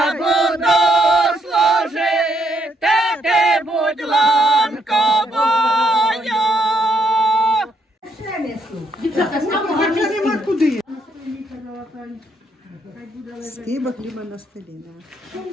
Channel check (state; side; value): normal; both; correlation 0.74